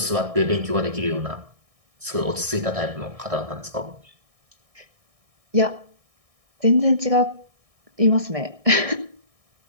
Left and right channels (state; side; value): late; left; 1.6 ms